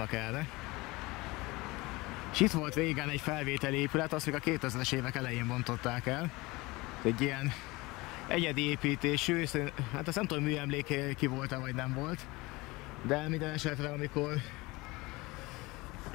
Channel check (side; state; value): right; quieter; 22.4 dB